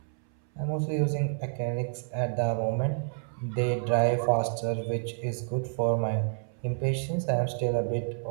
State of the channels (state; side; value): silent; left; 58 dB below the other